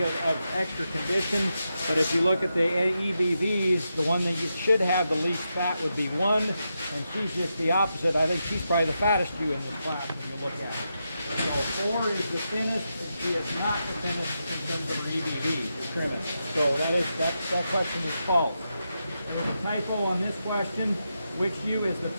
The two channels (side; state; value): both; inverted; correlation -0.86